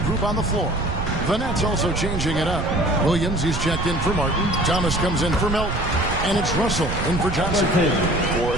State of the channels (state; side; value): noise; right; rumble, 5 dB below the sound